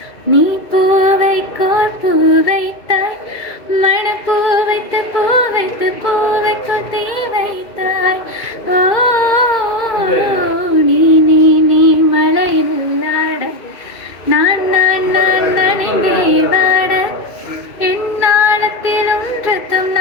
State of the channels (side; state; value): right; late; 2.5 ms